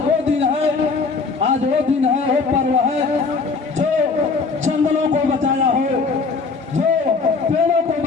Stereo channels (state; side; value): quieter; right; 4.5 dB